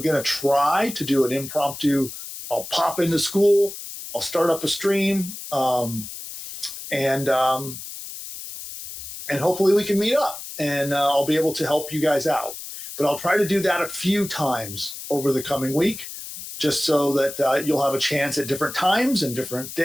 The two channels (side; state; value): left; noise; hiss, 11 dB below the sound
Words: going to try to do an impromptu. I'll pop into school, I'll start up a stream, and hopefully we can meet up, and I'll be able to help you guys out. But I'll try to do that a few times over the coming week, just so that you'll have a chance at different times and different